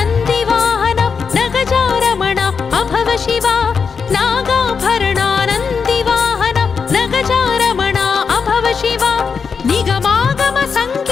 नगजारमण अभव शिवा नागाभरणानन्दिवाहन नगजारमण अभव शिवा निगमागम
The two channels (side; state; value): right; quieter; 5.8 dB